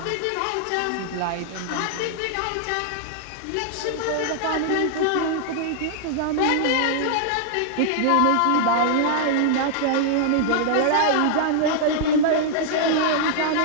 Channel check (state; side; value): different; both; correlation -0.01